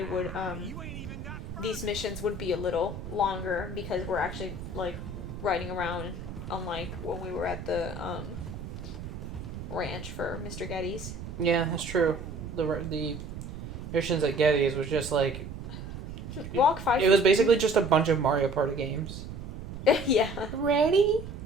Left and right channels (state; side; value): noise; right; rumble, 9 dB below the sound